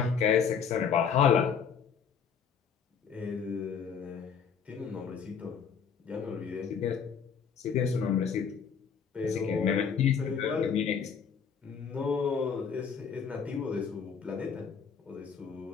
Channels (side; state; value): right; quieter; 6.8 dB